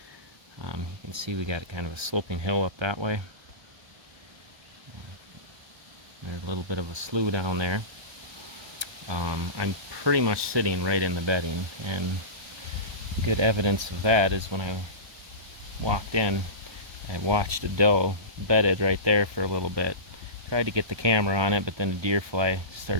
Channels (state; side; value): late; left; 1.2 ms